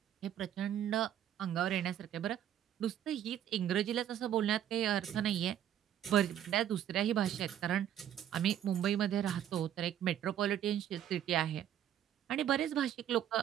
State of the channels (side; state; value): left; quieter; 10.6 dB